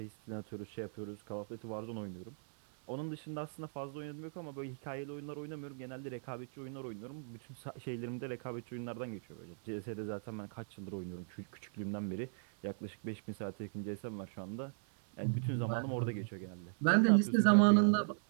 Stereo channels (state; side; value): silent; left; 53 dB below the other